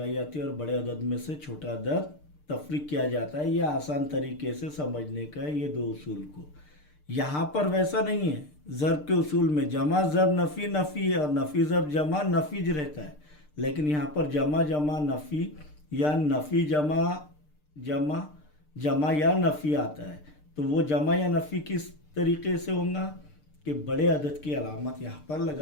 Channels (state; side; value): late; right; 6.7 ms